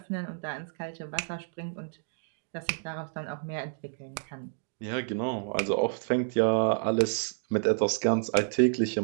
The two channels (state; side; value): silent; left; digital silence